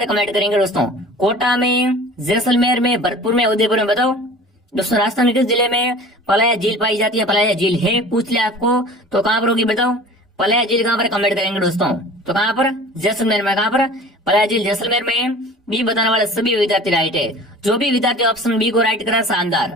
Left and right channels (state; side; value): normal; both; correlation 0.42